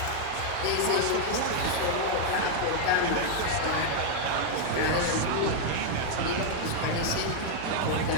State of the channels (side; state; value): both; different; correlation 0.00